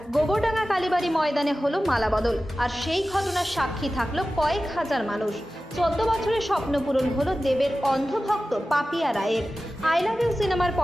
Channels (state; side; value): normal; both; correlation 0.95